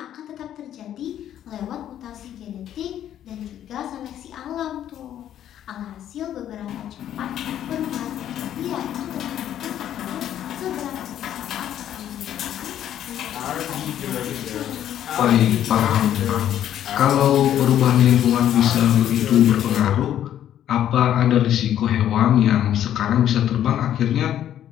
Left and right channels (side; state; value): right; quieter; 11.0 dB